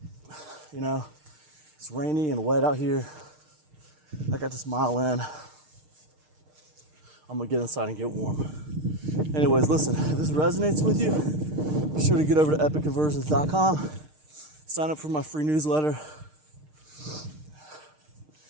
You know, it's rainy and wet out here. I got this mile in. I'm gonna get inside and get warm. Anyways, listen, if this resonates with you, be sure to get over to epicconversions.com. Sign up for my free newsletter.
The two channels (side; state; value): left; late; 6.6 ms